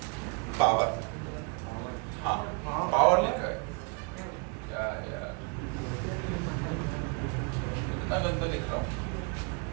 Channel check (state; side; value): quieter; left; 34.0 dB